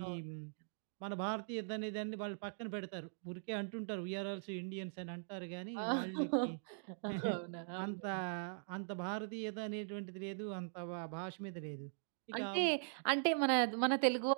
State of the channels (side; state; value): left; silent; digital silence